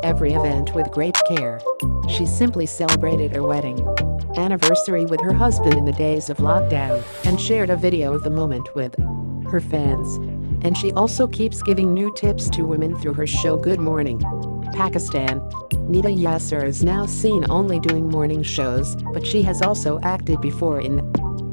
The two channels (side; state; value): both; inverted; correlation -1.00